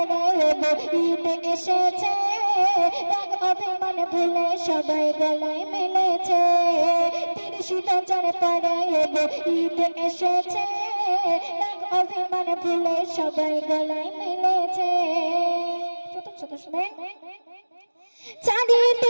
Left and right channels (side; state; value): both; inverted; correlation -1.00